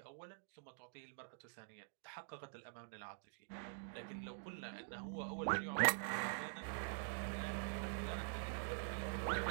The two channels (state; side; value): silent; left; digital silence